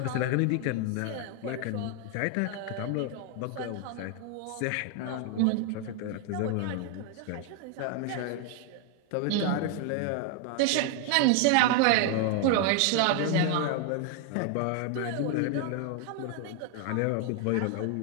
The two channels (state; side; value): different; both; correlation 0.00